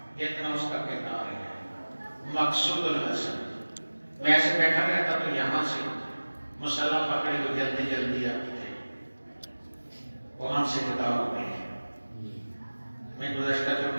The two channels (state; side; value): inverted; both; correlation -1.00